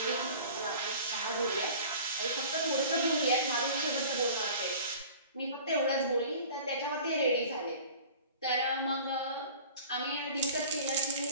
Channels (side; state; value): both; inverted; correlation -0.43